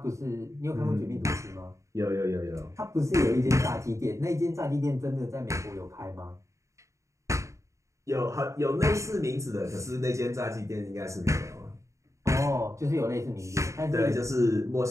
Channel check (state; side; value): late; left; 0.15 ms